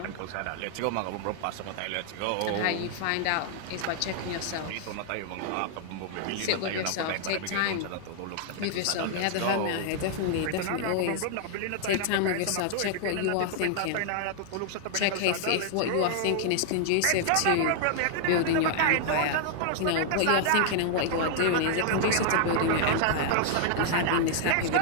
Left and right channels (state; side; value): different; both; correlation -0.01